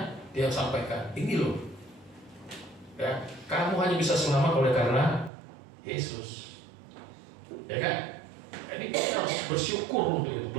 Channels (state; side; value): drops out; left; at 5.3 s